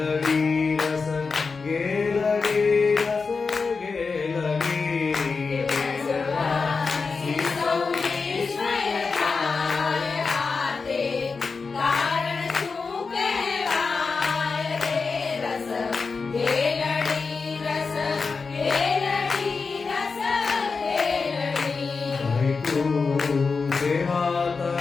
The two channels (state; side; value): quieter; right; 4.7 dB